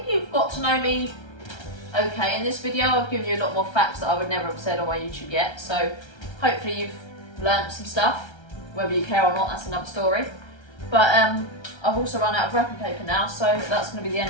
you've got to know me okay in this video. I've given you a lot more facts that I would never have said on my YouTube yet, so hopefully you've learnt some stuff. Whether you care or not, that's another story. But I've also run out of wrapping paper now, so that's going to be the end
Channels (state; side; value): late; right; 1.3 ms